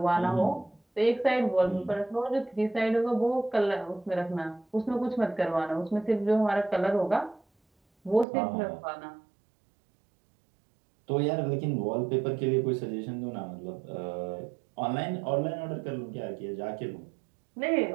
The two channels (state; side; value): drops out; left; at 8.2 s